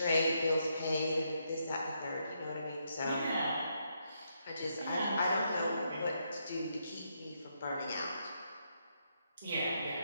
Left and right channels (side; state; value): both; inverted; correlation -0.78